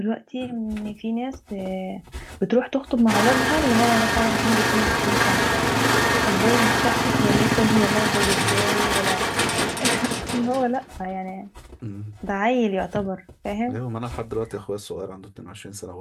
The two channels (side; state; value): both; identical; correlation 1.00